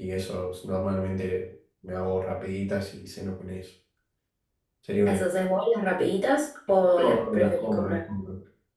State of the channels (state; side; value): identical; both; correlation 1.00